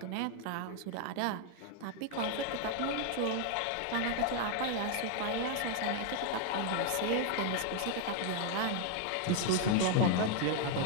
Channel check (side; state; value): both; different; correlation 0.00